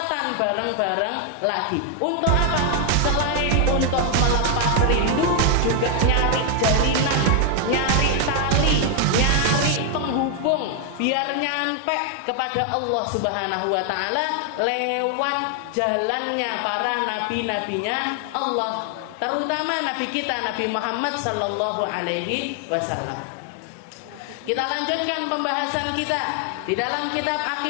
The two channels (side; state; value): both; different; correlation 0.00